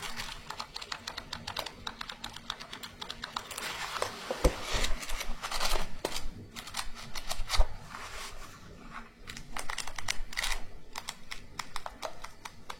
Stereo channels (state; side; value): identical; both; correlation 1.00